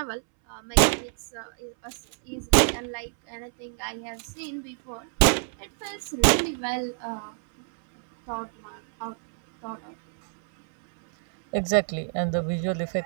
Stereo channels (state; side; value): silent; left; 60 dB below the other